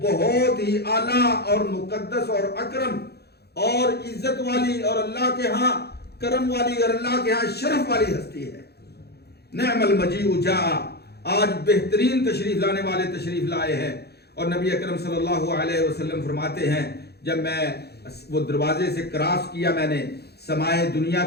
بہت ہی اعلیٰ اور مقدس اور اکرم اور عزت والی اور اللہ کے ہاں کرم والی اور اللہ کے ہاں شرف والی ہستی ہے. نعم المجیء جاء, آج بہترین تشریف لانے والے تشریف لائے ہیں. اور نبی اکرم صلی اللہ علیہ وسلم فرماتے ہیں جب میں وہ دروازے سے کراس کیا, میں نے سمائے دنیا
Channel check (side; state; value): right; late; 0.47 ms